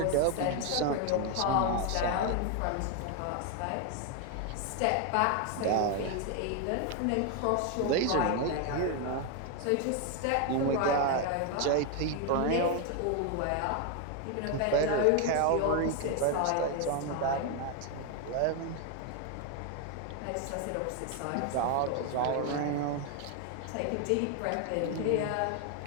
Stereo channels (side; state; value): both; different; correlation 0.01